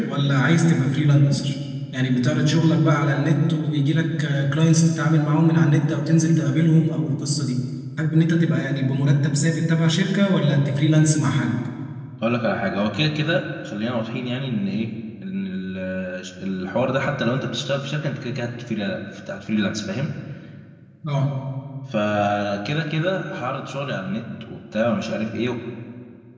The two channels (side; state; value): both; identical; correlation 1.00